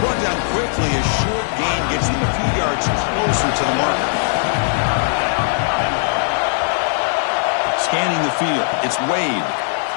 brought down quickly as short gain gets them a few yards closer to the marker. Scanning the field. It's Wade.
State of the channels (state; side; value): silent; right; digital silence